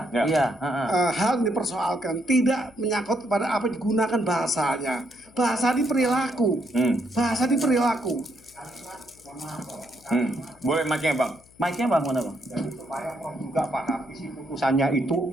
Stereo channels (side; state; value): left; noise; hum, 28 dB below the sound